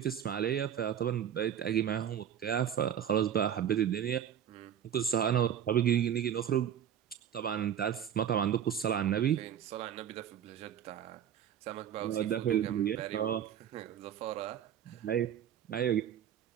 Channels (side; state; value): left; quieter; 9.4 dB